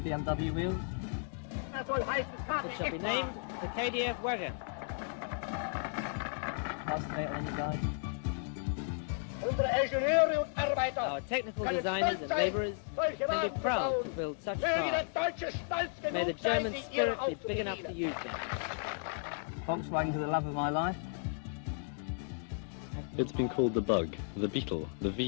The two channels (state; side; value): silent; right; 55 dB below the other